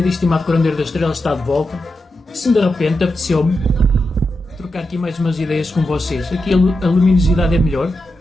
e estimado curandeiro das estrelas está de volta. Se de repente apeteceu-me trocar aqui mais umas ideias com vocês. Aqui a luminosidade é melhor.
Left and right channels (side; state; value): both; normal; correlation 0.88